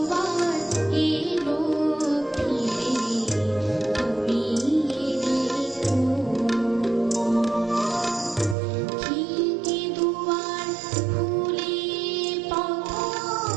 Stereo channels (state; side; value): drops out; left; at 8.6 s